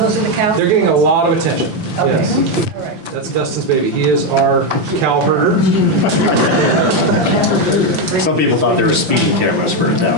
are the cows? They're getting a lot of attention. Okay. Yes. All right. That's Dustin's baby. He is our cow herder. Some people thought they were speeding cameras for it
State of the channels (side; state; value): left; late; 5.8 ms